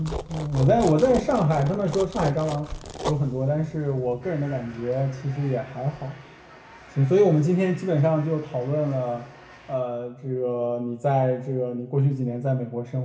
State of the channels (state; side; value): identical; both; correlation 1.00